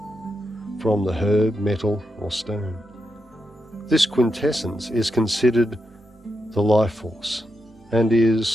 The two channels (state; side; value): normal; both; correlation 0.85